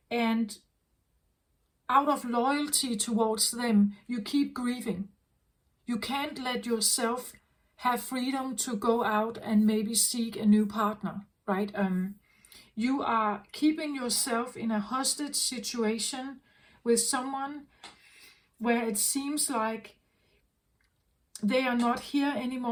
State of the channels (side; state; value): both; identical; correlation 1.00